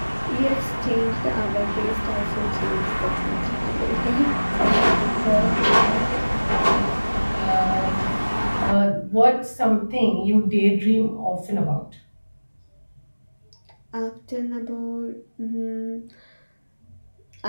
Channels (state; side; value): inverted; both; correlation -1.00